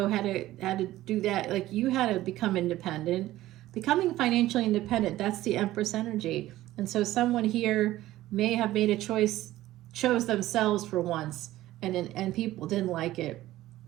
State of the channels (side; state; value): left; quieter; 15.5 dB